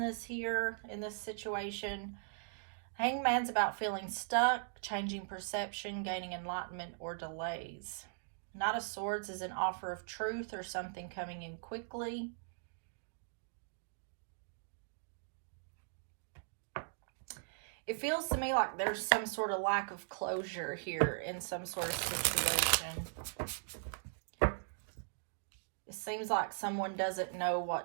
here in this situation. Hangman's about feeling stuck, changing perception, gaining enlightenment, or delays. Knight of Swords is an offer of truth or something coming in quickly. It feels to me like there's some sort of lack of closure here in some sort of situation. It seems like someone doesn't know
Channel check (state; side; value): silent; left; digital silence